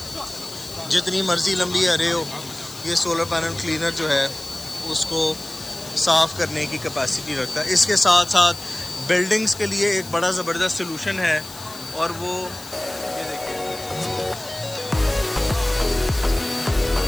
जितनी मर्ज़ी लंबी अरे हो, ये सोलर पैनल क्लीनर जो है उसको साफ़ करने की कैपेसिटी रखता है। इसके साथ साथ बिल्डिंग्स के लिए एक बड़ा ज़बरदस्त सलूशन है और वो ये देखिए,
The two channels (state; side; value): noise; left; hiss, 16 dB below the sound